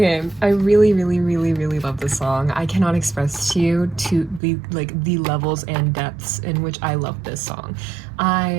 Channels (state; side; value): drops out; left; at 4.4 s